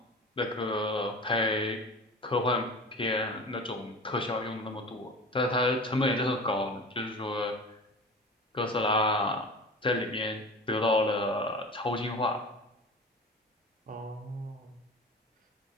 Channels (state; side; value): normal; both; correlation 0.35